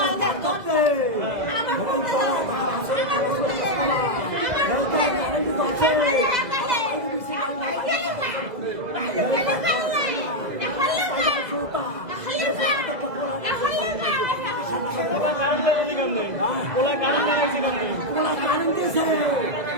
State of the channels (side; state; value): left; late; 2.0 ms